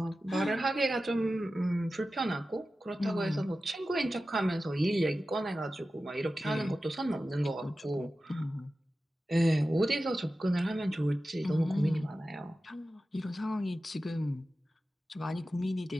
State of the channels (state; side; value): normal; both; correlation 0.94